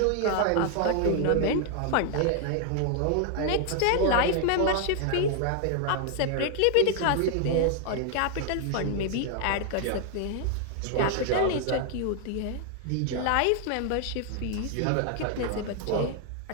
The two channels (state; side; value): different; both; correlation 0.00